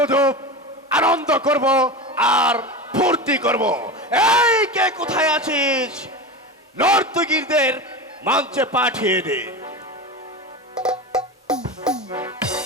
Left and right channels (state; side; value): normal; both; correlation 0.24